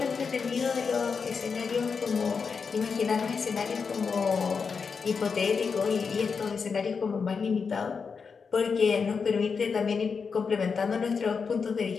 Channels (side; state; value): right; quieter; 5.5 dB